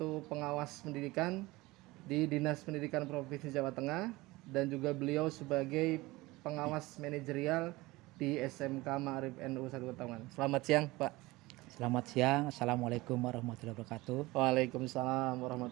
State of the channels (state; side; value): quieter; left; 20.7 dB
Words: pengawas pendidikan di Dinas Pendidikan Provinsi Jawa Tengah dan juga beliau sebagai pengawas manajerial di SMK Ma'arif NU 1 Taman. Selamat siang, Pak. Selamat siang, Assalamualaikum warahmatullahi wabarakatuh. Waalaikumsalam